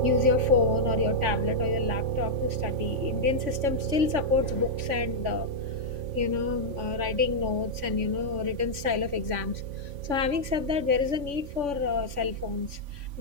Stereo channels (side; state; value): left; late; 3.5 ms